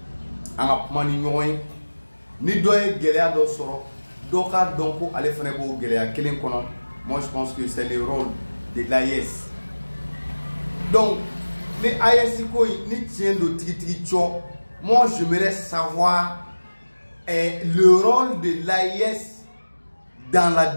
an ka kuma ni ɲɔgɔn ye ni dɔ ye gɛlɛya dɔ sɔrɔ dɔ k'a dɔn ko ale fana b'o gɛlɛya kelen kɔnɔ. Moi, je pense que c'est le rôle de l'AES. Donc, les AES, ni tient de tiki moi, j'aimerais savoir le rôle de l'AES dans la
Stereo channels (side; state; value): both; inverted; correlation -1.00